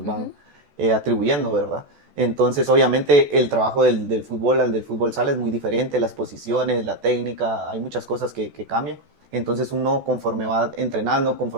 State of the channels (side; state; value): left; late; 14 ms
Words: van ujú. atribuyendo, ¿verdad? Entonces, obviamente, el trabajo del fútbol al del fútbol sala es muy diferente, las posiciones, la técnica, hay muchas cosas que cambian. Entonces, uno conforme va entrenando,